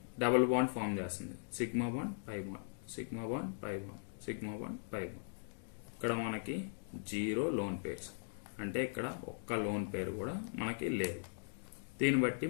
డబుల్ బాండ్ ఫామ్ చేస్తుంది, sigma bond pi bond, sigma bond pi bond, sigma bond pi bond. ఇక్కడ మనకి 0 లోన్ పేర్స్, అంటే ఇక్కడ ఒక్క లోన్ పేరు కూడా మనకి లేదు. దీన్ని బట్టి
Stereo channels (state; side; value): silent; right; digital silence